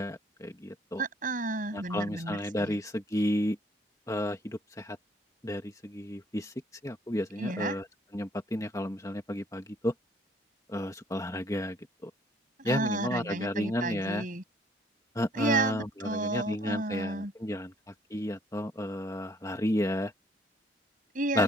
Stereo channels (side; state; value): both; normal; correlation 0.62